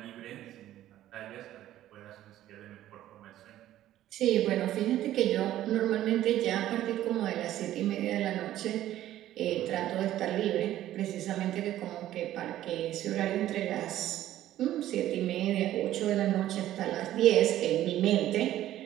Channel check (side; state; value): left; quieter; 13.3 dB